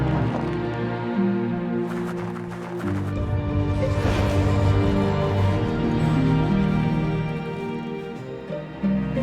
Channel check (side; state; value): both; identical; correlation 1.00